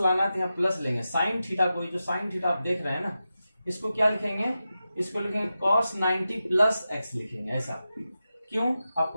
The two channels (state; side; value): inverted; both; correlation -0.92